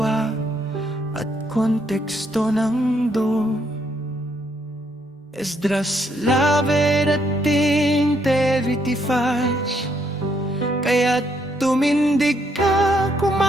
at konteksto ng do. Esdras 11:35. Kaya't tumindig ka,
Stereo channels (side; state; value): both; normal; correlation 0.73